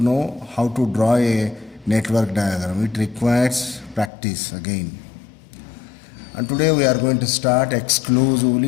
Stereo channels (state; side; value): drops out; right; at 4.1 s